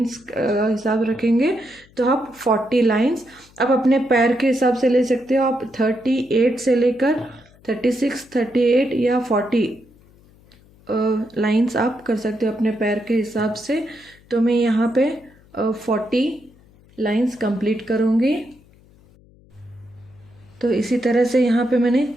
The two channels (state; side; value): noise; left; hum, 28 dB below the sound